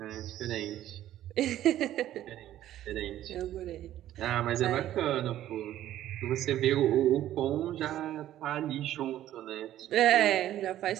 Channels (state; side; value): quieter; left; 12.8 dB